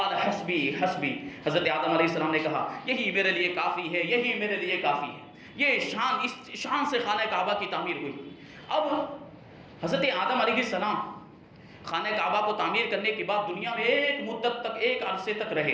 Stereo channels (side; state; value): both; identical; correlation 1.00